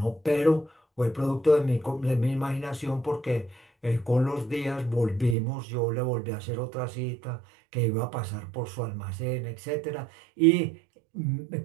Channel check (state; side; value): drops out; left; at 5.4 s